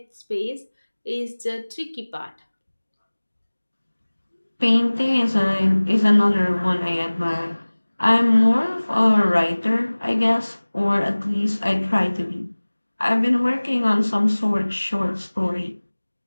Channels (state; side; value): inverted; both; correlation -1.00